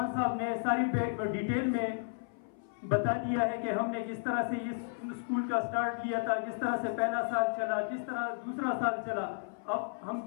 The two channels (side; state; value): right; silent; 56 dB below the other